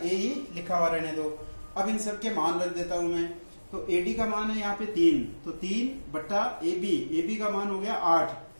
एई लिखा हुआ रहने दो। अब इन सब के मान रख देता हूं मैं। तो एडी का मान है यहाँ पे 3, तो 3/एबी, एबी का मान हो गया 8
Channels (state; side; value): inverted; both; correlation -1.00